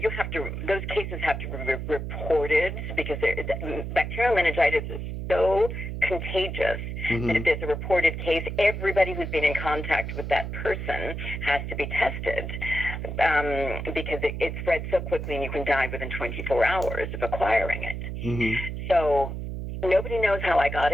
have to, those cases have to be reported because bacterial meningitis is so contagious that if there's a reported case, everybody who's been in contact with that person has to be tested because it spreads so quickly and you can die within 24 hours of acquiring it. So nobody knows how I got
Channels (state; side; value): noise; right; hum, 5 dB below the sound